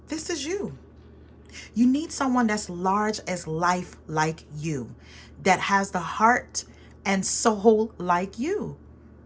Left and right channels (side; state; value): both; identical; correlation 1.00